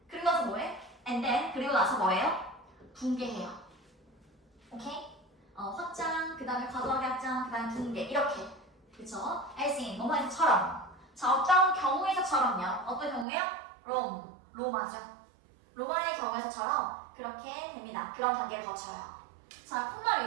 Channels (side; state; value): left; drops out; at 13.2 s